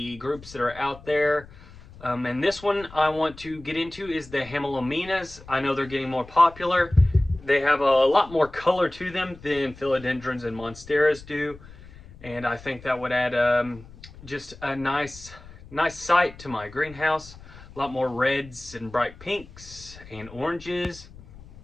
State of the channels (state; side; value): noise; left; rumble, 19 dB below the sound